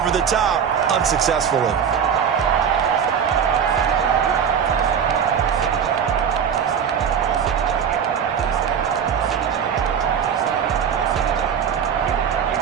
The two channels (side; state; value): left; quieter; 7.6 dB